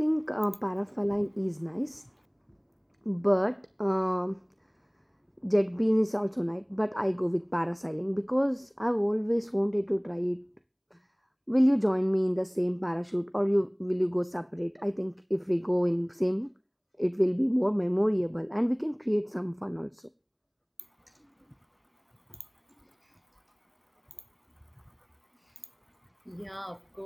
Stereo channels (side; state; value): both; identical; correlation 1.00